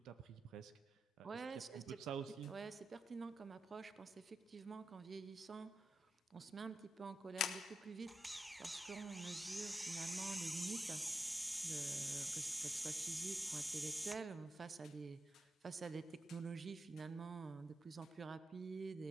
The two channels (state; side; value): normal; both; correlation 0.88